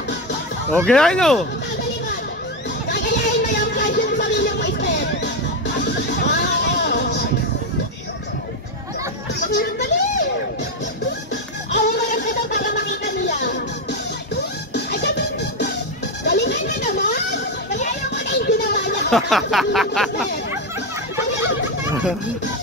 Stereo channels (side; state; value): both; normal; correlation 0.09